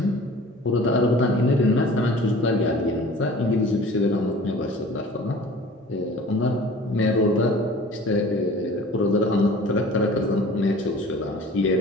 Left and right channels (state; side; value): normal; both; correlation 0.44